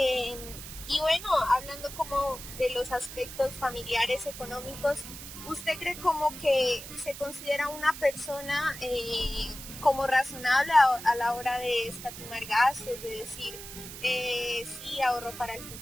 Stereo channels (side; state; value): right; noise; hiss, 12 dB below the sound